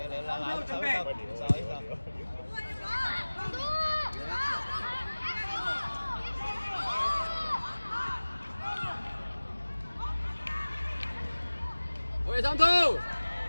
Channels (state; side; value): inverted; both; correlation -1.00